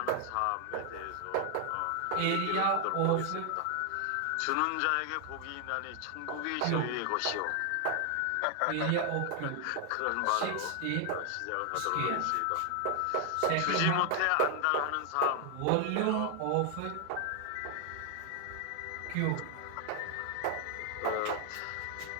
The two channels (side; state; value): both; different; correlation 0.00